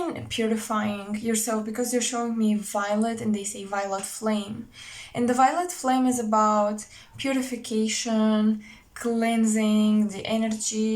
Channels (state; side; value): identical; both; correlation 1.00